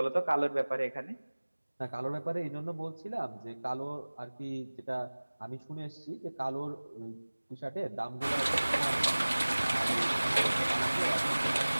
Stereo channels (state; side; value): inverted; both; correlation -1.00